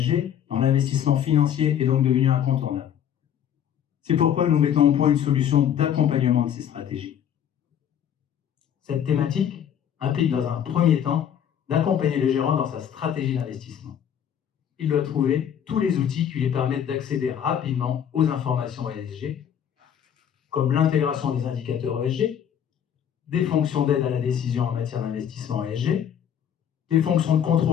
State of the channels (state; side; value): quieter; right; 9.2 dB